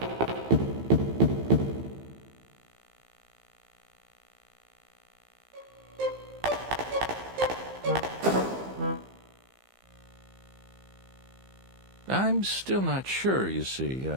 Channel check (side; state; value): left; late; 15 ms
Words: I'm still not sure, you see.